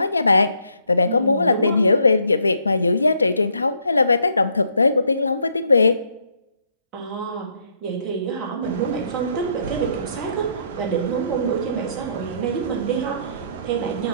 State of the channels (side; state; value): both; inverted; correlation -0.70